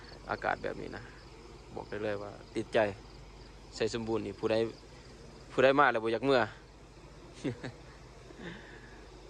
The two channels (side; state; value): both; identical; correlation 1.00